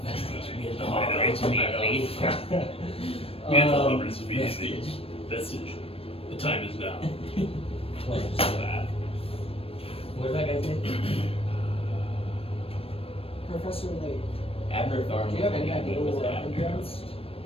vestige. We had the I know. immediately. Vestige. Vestige. The time is now. Close. That. What did that guy say? Professor Layk. Abner Thorne. Do you have was any the idea name, what was we're it up Abner? against?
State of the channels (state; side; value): late; right; 0.28 ms